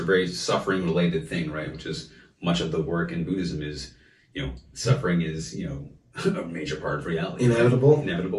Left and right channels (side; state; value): both; identical; correlation 1.00